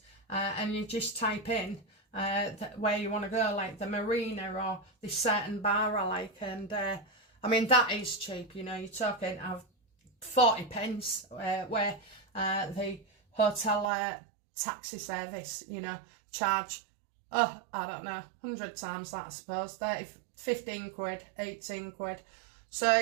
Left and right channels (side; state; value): left; drops out; at 13.9 s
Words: and you just type in where you want to go, like the marina or this certain bar I like, and I mean, that is cheap, you know. You're talking of 40 pence, where the hotel taxi service, you know, charge, I don't know, 100 times that, I suppose, 15 quid, 18 quid. So